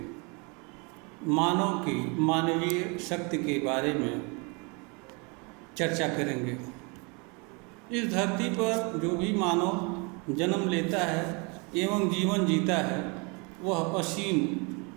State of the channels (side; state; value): left; quieter; 31.2 dB